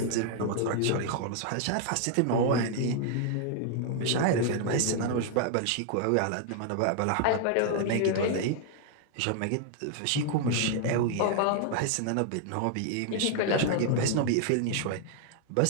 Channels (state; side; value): different; both; correlation 0.00